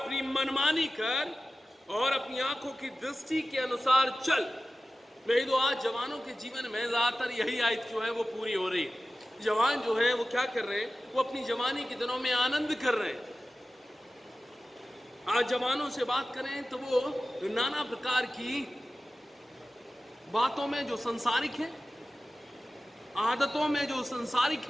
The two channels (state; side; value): normal; both; correlation 0.95